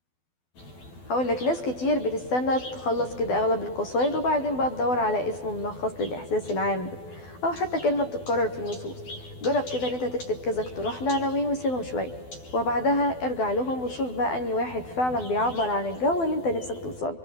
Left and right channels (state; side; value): late; right; 12 ms